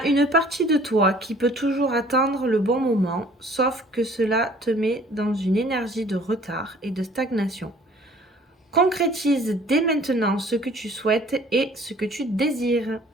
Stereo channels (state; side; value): normal; both; correlation 0.54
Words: une partie de toi qui peut toujours attendre le bon moment, sauf que cela te met dans une énergie de retard et de stagnation. Concrétise dès maintenant ce que tu souhaites et ce que tu désires.